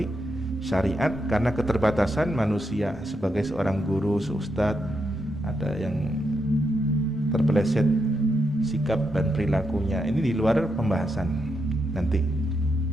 syariat karena keterbatasan manusia sebagai seorang guru, seustadz, ada yang terpeleset sikap dan perilakunya. Ini di luar pembahasan nanti.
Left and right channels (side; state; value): both; normal; correlation 0.82